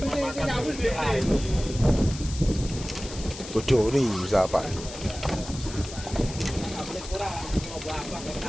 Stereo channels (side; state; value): left; noise; hiss, 12 dB below the sound